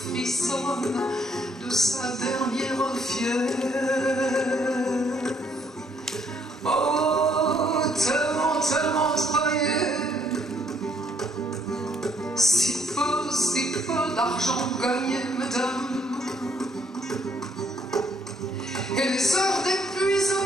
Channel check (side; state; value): both; normal; correlation 0.68